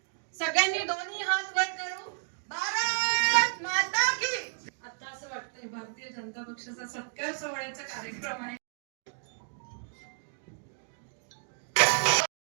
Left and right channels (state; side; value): silent; left; digital silence